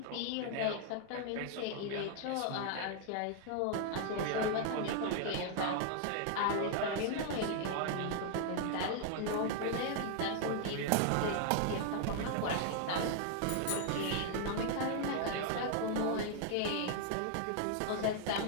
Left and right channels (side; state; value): both; different; correlation 0.00